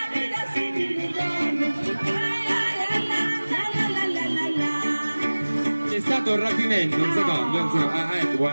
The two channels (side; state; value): both; inverted; correlation -1.00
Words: sentilo torno. C'è stato un rapimento, un secondo, un secondo. Ah, ecco,